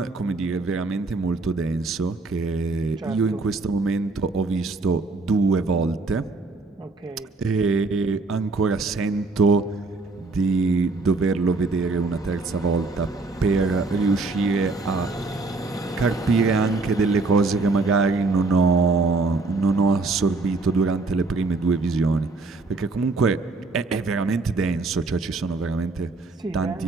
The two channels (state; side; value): quieter; left; 3.6 dB